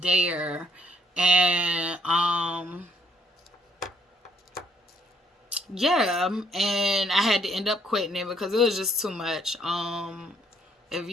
there, and yeah, and I had to end up quitting it because it was just too much. If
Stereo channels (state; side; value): normal; both; correlation 0.67